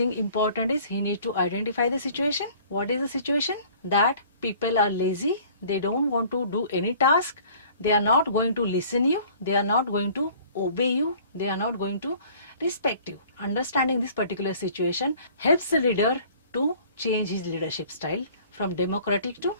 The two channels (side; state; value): both; inverted; correlation -0.51